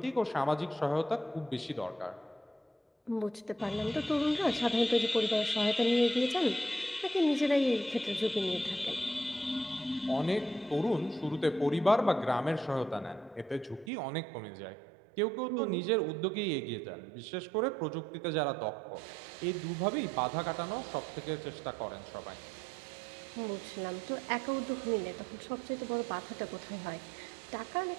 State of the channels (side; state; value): left; drops out; at 13.9 s